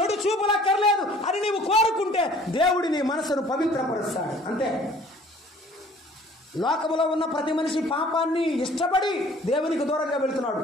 చూపులు అక్కర్లేదు అని నీవు కోరుకుంటే దేవుడి నీ మనసును పవిత్రపరుస్తాడు. అంతే. లోకములో ఉన్న ప్రతి మనిషి పాపాన్ని ఇష్టపడి దేవునికి దూరంగా వెళ్తున్నాడు.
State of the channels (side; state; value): both; normal; correlation 0.53